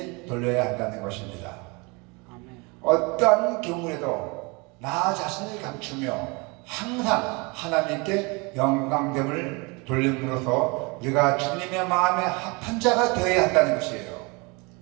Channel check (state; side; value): quieter; left; 28.4 dB